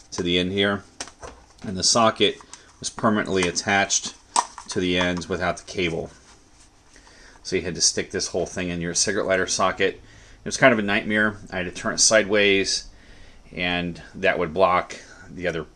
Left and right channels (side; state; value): both; identical; correlation 1.00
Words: to the end here, and the socket was permanently attached to the ends without the cable. So you had to stick this whole thing in your cigarette lighter socket. It was kind of a nightmare. I had to turn it sideways, and that would block the other